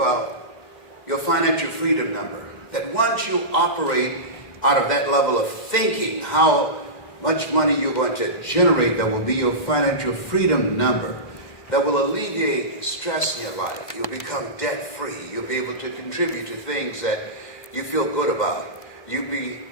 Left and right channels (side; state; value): right; late; 2.1 ms